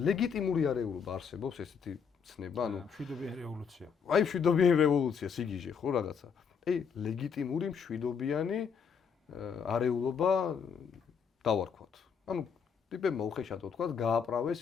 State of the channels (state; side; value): quieter; right; 6.6 dB